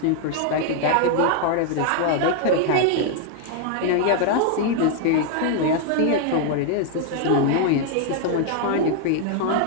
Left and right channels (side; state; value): both; different; correlation 0.00